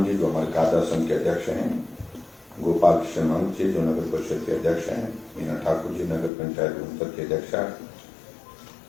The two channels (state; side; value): drops out; right; at 6.3 s